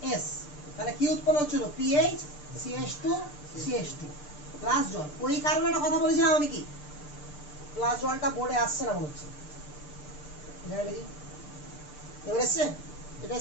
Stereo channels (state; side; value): late; right; 6.7 ms